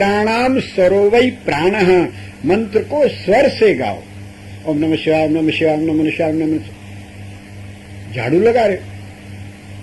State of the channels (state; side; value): identical; both; correlation 1.00